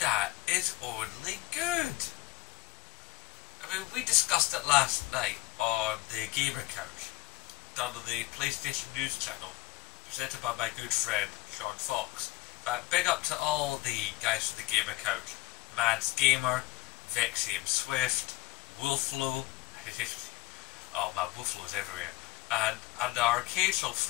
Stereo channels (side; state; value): right; quieter; 19.2 dB